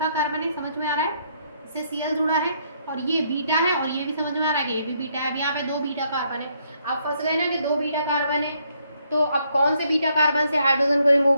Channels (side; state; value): both; inverted; correlation -0.71